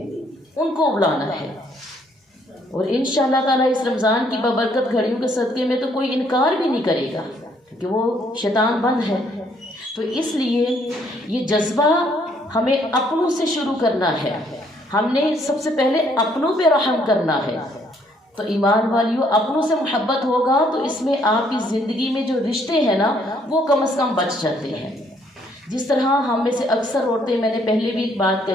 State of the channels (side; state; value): both; normal; correlation 0.67